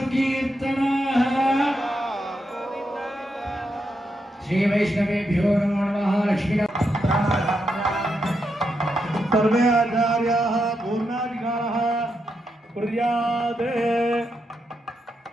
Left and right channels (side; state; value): both; normal; correlation 0.83